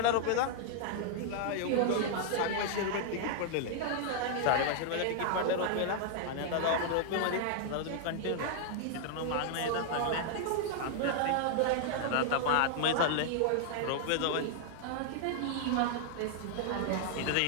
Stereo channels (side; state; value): both; different; correlation -0.01